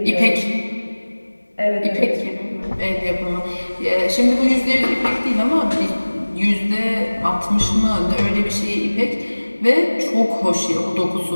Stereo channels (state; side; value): inverted; both; correlation -1.00